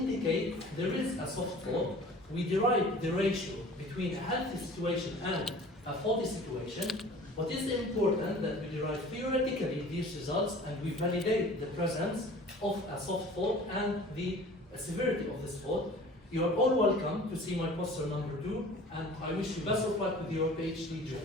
there is a soft fault. We derive the ratio between a healthy situation and a faulty situation. What is important that we derive theoretically these results and we validate the presence of a soft fault and the severity of this fault. You are all welcome to see my poster number 2, and I wish you best of luck with your PhD journey.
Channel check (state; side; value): normal; both; correlation 0.45